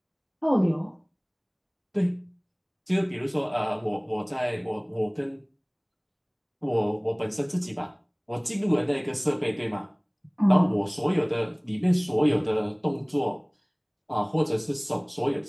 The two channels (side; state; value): both; identical; correlation 1.00